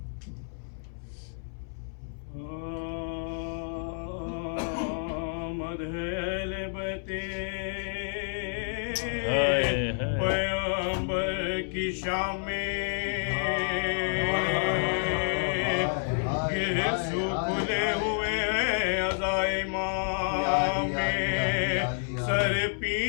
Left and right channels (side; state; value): right; silent; 58 dB below the other